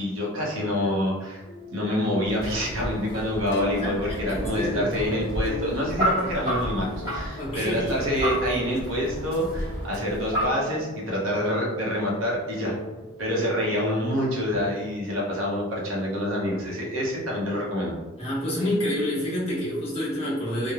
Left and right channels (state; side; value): normal; both; correlation 0.35